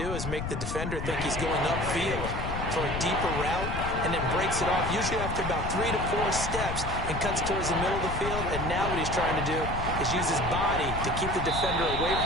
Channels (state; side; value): noise; left; rumble, 4 dB below the sound